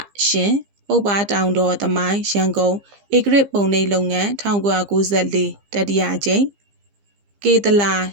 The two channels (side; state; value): left; late; 15 ms